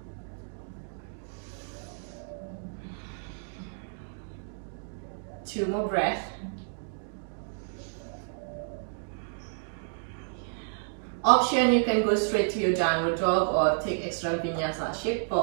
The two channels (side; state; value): left; silent; digital silence